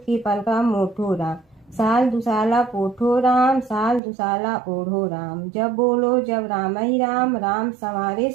पलका मोठो राम। साल दुसाला पोठो राम, साल दुसाला ओढ़ो राम। जब बोलो जब राम ही राम, राम संवारे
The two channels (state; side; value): drops out; left; at 4.0 s